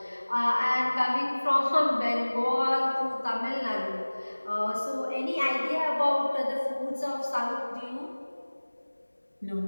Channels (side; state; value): both; inverted; correlation -1.00